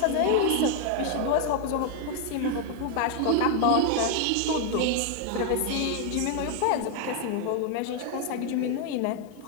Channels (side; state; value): both; different; correlation 0.00